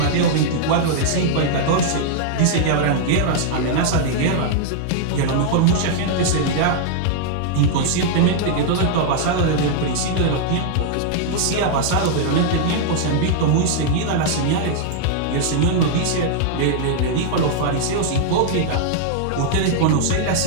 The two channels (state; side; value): different; both; correlation -0.01